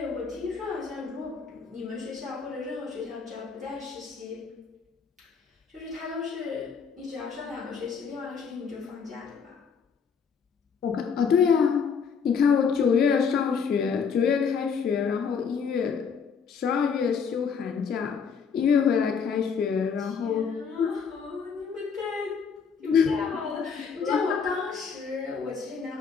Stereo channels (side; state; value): right; quieter; 6.2 dB